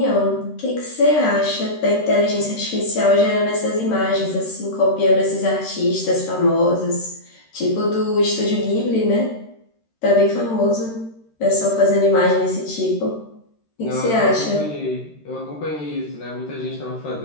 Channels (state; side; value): late; right; 13 ms